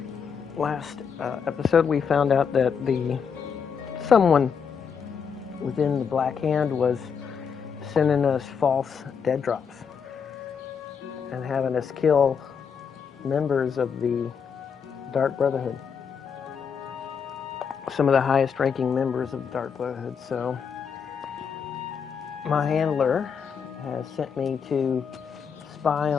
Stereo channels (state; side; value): quieter; right; 6.6 dB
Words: Last episode we found out that someone within the Black Hand was sending us false dead drops and having us kill members of the Dark Brotherhood. Some of the highest ranking members of the Dark Brotherhood. So my handler has sent me to spy